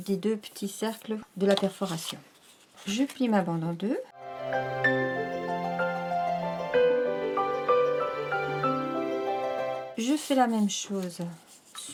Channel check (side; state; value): both; identical; correlation 1.00